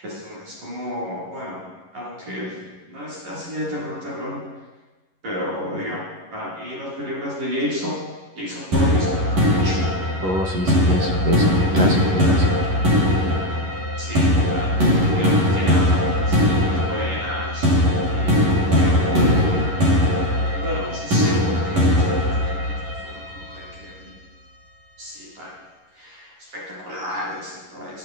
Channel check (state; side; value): late; left; 11 ms